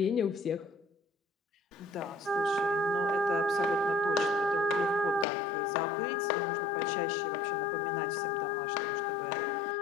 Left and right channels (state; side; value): drops out; right; at 5.2 s